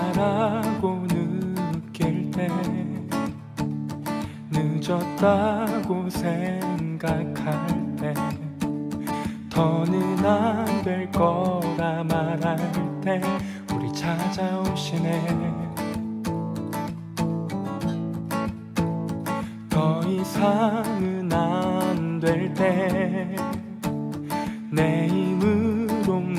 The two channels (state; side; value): identical; both; correlation 1.00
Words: 느낄 때, 늦었다고 생각할 때, 더는 안 될 거라 말할 때 우리 찾아오시네. 더 이상은 안 될 때, 내 힘으로